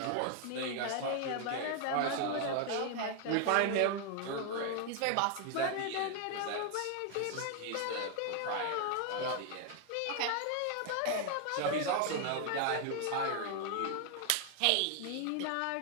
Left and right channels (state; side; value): different; both; correlation 0.00